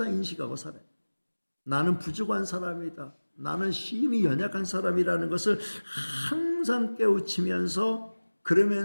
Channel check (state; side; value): inverted; both; correlation -1.00